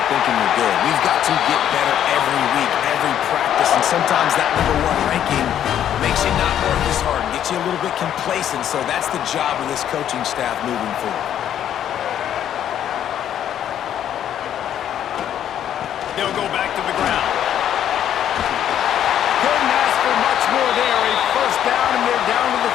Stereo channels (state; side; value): quieter; right; 10.3 dB